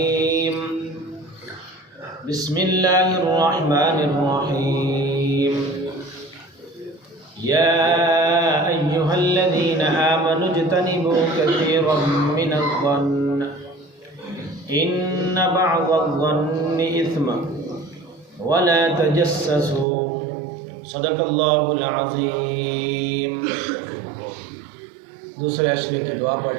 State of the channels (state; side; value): drops out; left; at 19.9 s